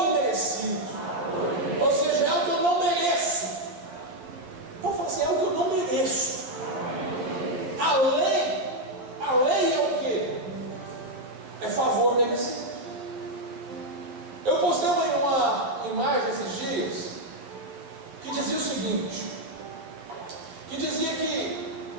imerecido. Ou seja, é o que eu não mereço. Pode falar assim, é o que eu não mereço. A lei é o quê? É favor merecido. Eu postei uma imagem esses dias que dizia o seguinte, que dizia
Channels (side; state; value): left; late; 11 ms